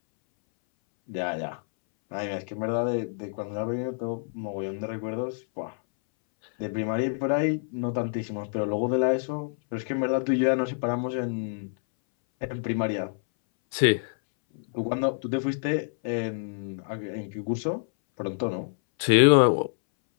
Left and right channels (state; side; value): silent; right; 60 dB below the other